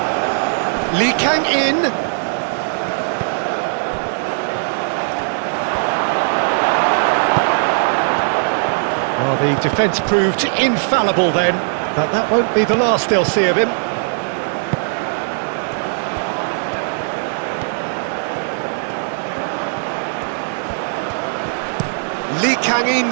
Lee Kang-in. Well, the defence proved infallible then, but that won't be the last they'll see of him. Lee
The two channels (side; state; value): left; silent; digital silence